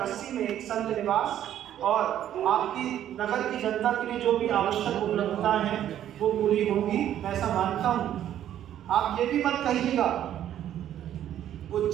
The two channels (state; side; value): quieter; left; 11.2 dB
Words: 80 में एक संत निवास और आपकी नगर की जनता के लिए जो भी आवश्यक उपलब्धताएं हैं वो पूरी होगी, मैं ऐसा मानता हूँ। आप ये भी मत कहिएगा